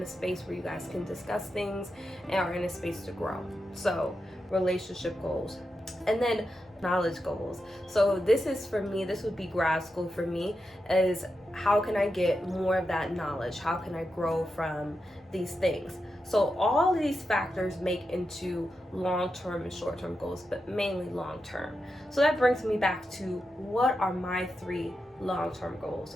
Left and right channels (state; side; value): normal; both; correlation 0.88